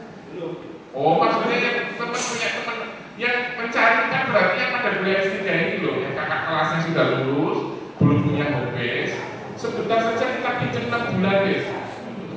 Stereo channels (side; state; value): both; identical; correlation 1.00